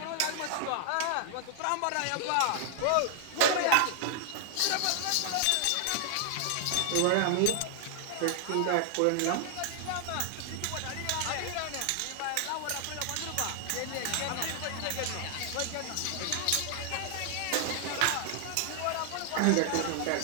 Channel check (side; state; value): both; different; correlation 0.00